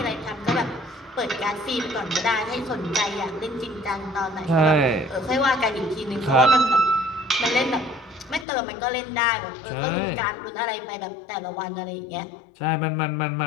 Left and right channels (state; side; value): drops out; right; at 8.5 s